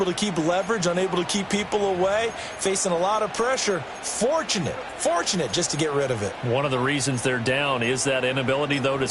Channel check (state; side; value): identical; both; correlation 1.00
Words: to keep leverage, unable to keep people away, facing a lot of pressure. Fortunate just to get rid of it. One of the reasons they're down is that inability, though, to